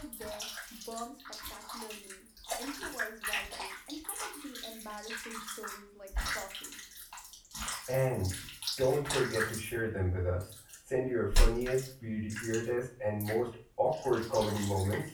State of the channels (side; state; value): both; identical; correlation 1.00